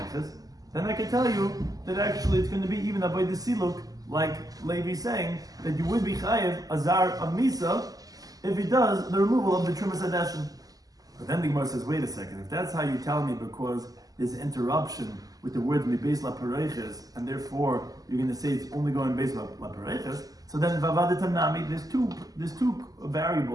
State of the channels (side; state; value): left; late; 0.17 ms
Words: then I can tell you that actually it's going to be even avodas siluk, like Levi's saying that you would be chayev azar of misa if he does the removal of the trumas hadeshin. But then the Gemara says, wait a second, if that's how you tell me because there's interruption with the words beis la pareiches, and therefore you're going to say it's only going beis la pareiches, so then vavadetam nami, there's two